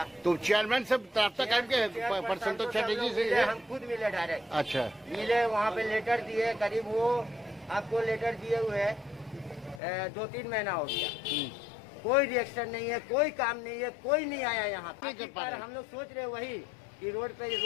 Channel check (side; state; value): right; drops out; at 9.8 s